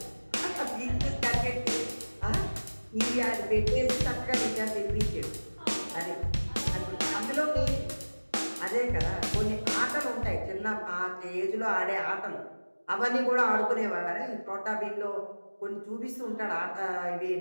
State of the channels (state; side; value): inverted; both; correlation -1.00